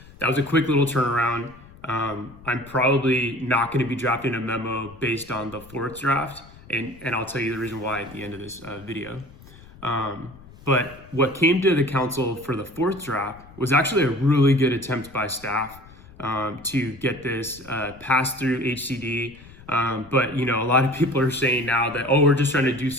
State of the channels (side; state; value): left; noise; rumble, 21 dB below the sound